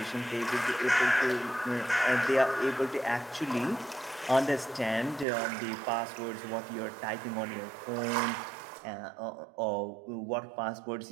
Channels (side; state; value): left; drops out; at 5.2 s